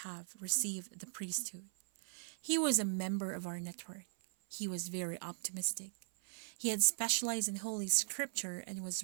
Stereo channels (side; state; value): left; silent; 52 dB below the other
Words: have received the priesthood. He was a member of our network. He was very optimistic. He had specialized in Holy Scripture and was